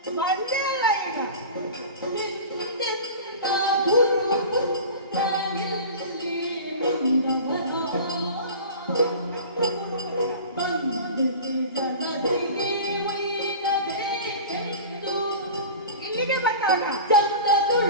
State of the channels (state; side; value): inverted; both; correlation -0.36